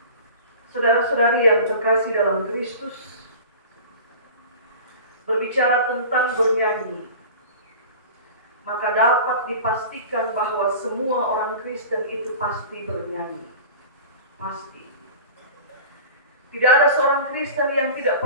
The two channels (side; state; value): both; inverted; correlation -0.38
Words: Saudara-saudari yang terkasih dalam Kristus, berbicara tentang bernyanyi, maka dapat dipastikan bahwa semua orang Kristen itu pasti bernyanyi. Pasti. Tidak ada seorang Kristen yang tidak